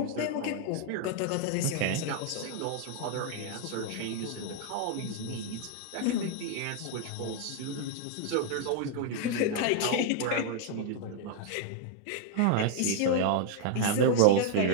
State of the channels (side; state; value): both; different; correlation 0.00